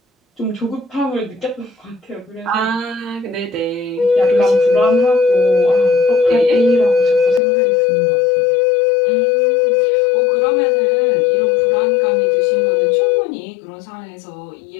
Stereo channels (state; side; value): drops out; right; at 7.4 s